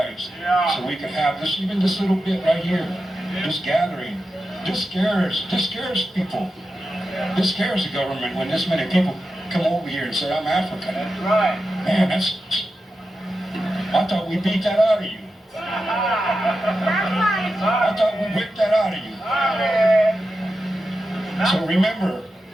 so we could have this, even this little bit right here, this gathering. This scares people. This scares the government when this many people come over here and say, I'm African. That's right. Man, I thought we beat that out of you. I thought we whipped that out of you. So remember,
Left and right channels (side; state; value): both; normal; correlation 0.90